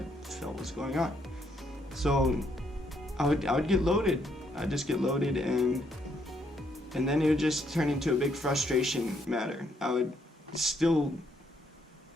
felt was going on. So I would get loaded. I'd just get loaded, and then it would just turn into a big frustration matter. I would still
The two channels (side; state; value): both; normal; correlation 0.73